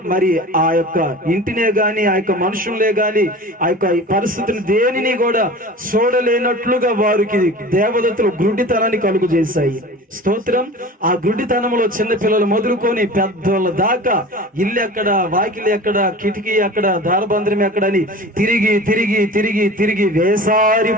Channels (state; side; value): normal; both; correlation 0.37